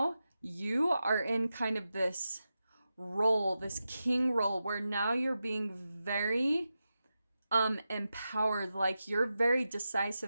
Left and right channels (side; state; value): both; inverted; correlation -0.91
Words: you are in kind of this role, this king role, where now you're being very empowered. Like, you're very